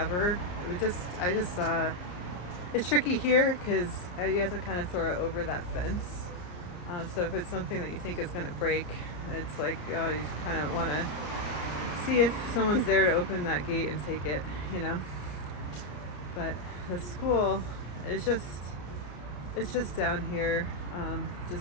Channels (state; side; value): late; right; 34 ms